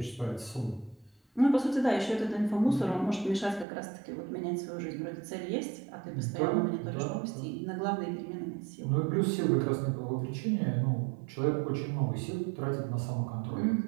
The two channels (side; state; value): left; drops out; at 3.7 s